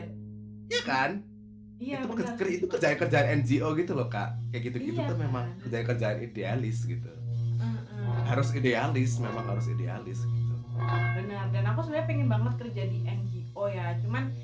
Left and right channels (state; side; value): identical; both; correlation 1.00